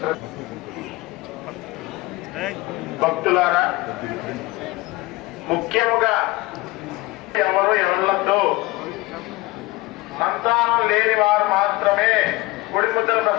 భక్తులారా, ముఖ్యముగా ఎవరు ఎవళ్ళతో సంతానం లేని వారు మాత్రమే గుడి ముద్దల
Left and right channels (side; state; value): right; quieter; 20.8 dB